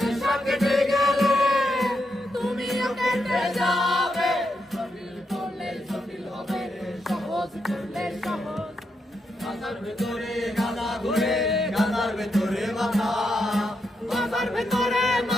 কেটে গেলে তুমিও কেটে যাবে, জটিল করলে জটিল হবে, সহজ করলে সহজ। গাজার ভেতরে গাদা ঘুরে, গাজার ভেতরে মাথা, গাজার ভেতরে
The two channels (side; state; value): both; normal; correlation 0.82